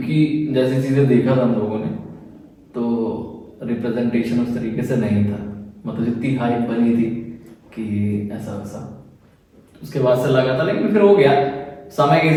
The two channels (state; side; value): identical; both; correlation 1.00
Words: जैसी चीजें देखा था हम लोगों ने, तो रिप्रेजेंटेशन उस तरीके से नहीं था, मतलब जितनी हाइप बनी थी कि ऐसा वैसा, उसके बाद से लगा था। लेकिन फिर हो गया, समय के